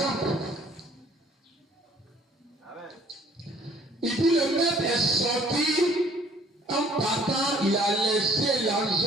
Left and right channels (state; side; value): normal; both; correlation 0.58